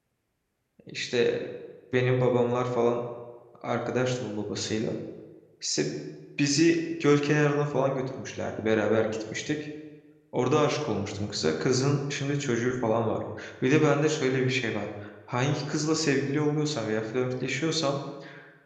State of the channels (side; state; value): both; identical; correlation 1.00